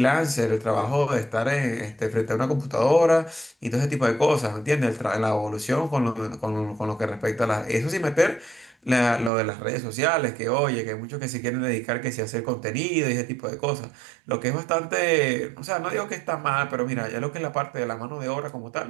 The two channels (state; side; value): drops out; left; at 9.3 s